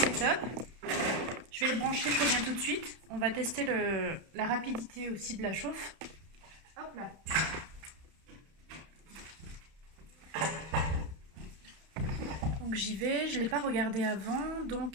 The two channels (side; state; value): left; late; 31 ms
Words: top. Je vais le brancher, je reviens tout de suite. On va tester la rapidité aussi de la chauffe. Hop là. Donc j'y vais, je ne l'ai pas regardé avant,